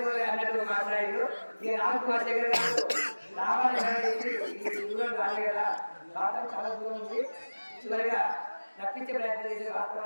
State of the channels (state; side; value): inverted; both; correlation -1.00